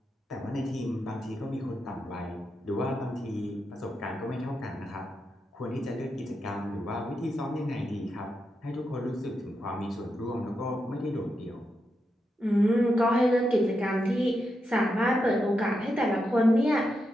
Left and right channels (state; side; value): normal; both; correlation 0.85